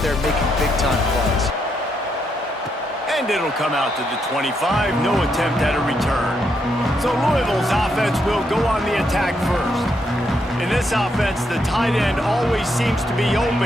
there making big-time plays. And it'll come out to the 25. No attempt at a return. So Louisville's offense will go on the attack first. In this offense, the tight end always seems to be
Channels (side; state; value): both; normal; correlation 0.78